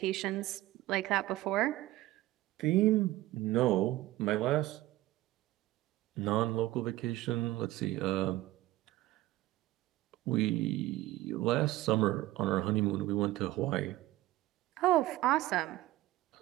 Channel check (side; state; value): left; quieter; 16.7 dB